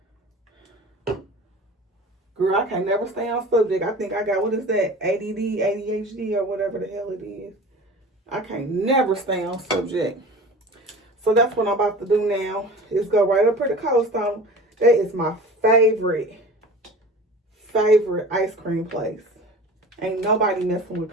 Girl, I can never stay on subject. I think I got, what is that? ADD, ADHD, or whatever the hell it is. I can't never stay on subject. So that's what I'm about to do now. Is go right up here to Cold Stone. That is my favorite ice cream place. Ain't nobody messing with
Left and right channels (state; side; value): normal; both; correlation 0.39